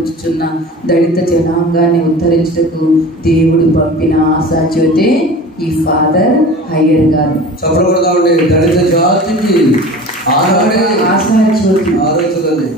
దళిత జనాంగాన్ని ఉద్ధరించుటకు దేవుడు పంపిన ఆశాజ్యోతే ఈ ఫాదర్ హయ్యర్ గారు. దళిత జాతికి ఆశాజ్యోతి.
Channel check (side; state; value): both; normal; correlation 0.38